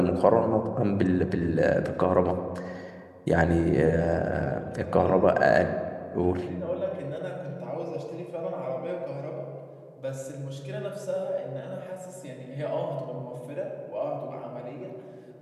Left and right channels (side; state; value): both; identical; correlation 1.00